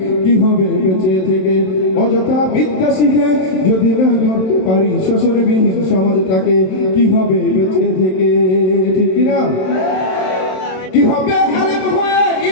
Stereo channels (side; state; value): right; late; 27 ms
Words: কি হবে বেঁচে থেকে অযথা বিদ্যা শিখে যদি না করতে পারি শ্বশুরবিহীন সমাজটাকে? কি হবে বেঁচে থেকে? ঠিক কিনা? কি হবে আলেম হয়ে